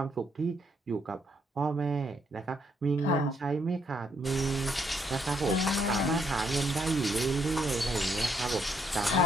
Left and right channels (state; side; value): normal; both; correlation 0.73